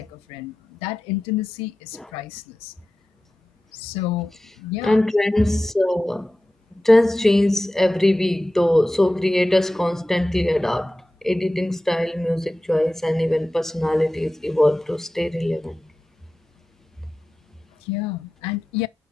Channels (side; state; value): both; normal; correlation 0.94